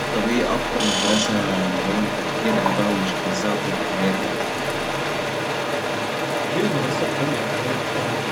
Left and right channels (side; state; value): both; identical; correlation 1.00